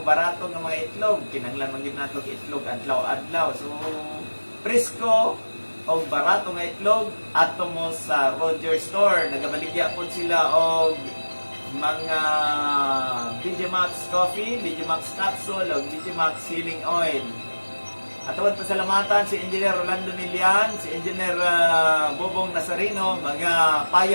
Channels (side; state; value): both; inverted; correlation -1.00